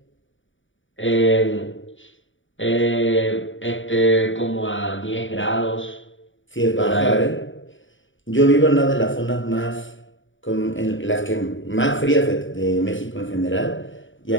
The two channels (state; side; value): late; right; 0.56 ms